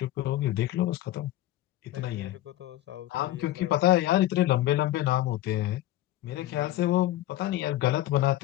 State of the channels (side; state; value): right; quieter; 14.7 dB